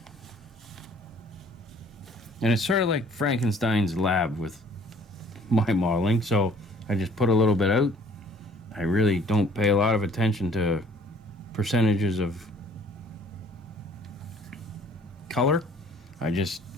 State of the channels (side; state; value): both; normal; correlation 0.56